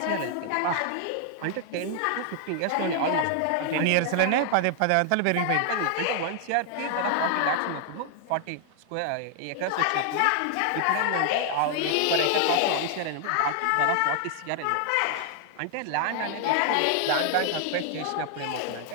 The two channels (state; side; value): different; both; correlation 0.00